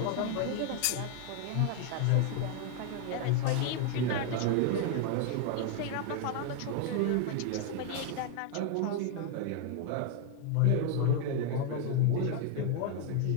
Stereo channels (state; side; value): different; both; correlation 0.00